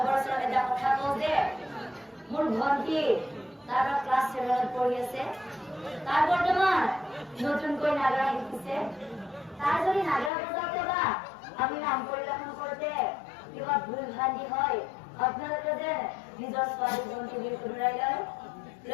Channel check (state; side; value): drops out; right; at 10.3 s